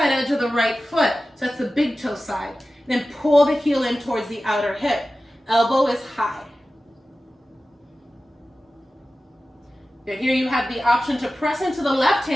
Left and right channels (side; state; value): both; normal; correlation 0.95